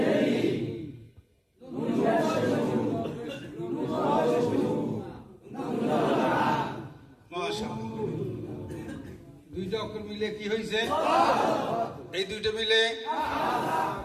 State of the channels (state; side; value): identical; both; correlation 1.00